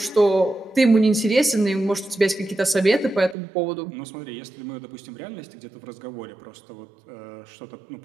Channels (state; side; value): drops out; left; at 3.4 s